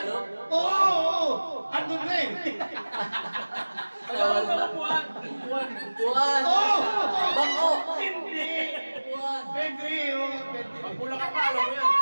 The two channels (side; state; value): both; inverted; correlation -1.00